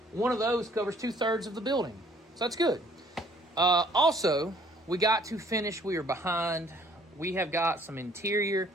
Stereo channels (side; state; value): both; normal; correlation 0.60